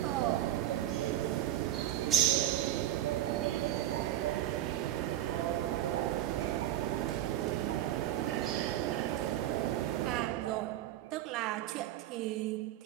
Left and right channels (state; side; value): quieter; left; 12.7 dB